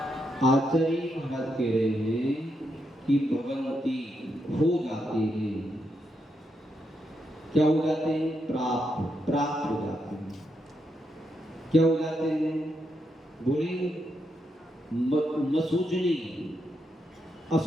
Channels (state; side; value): normal; both; correlation 0.82